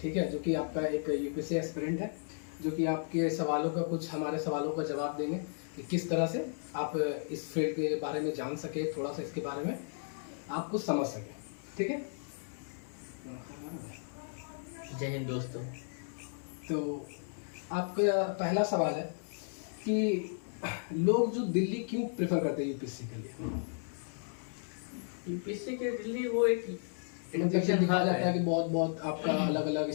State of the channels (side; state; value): right; silent; digital silence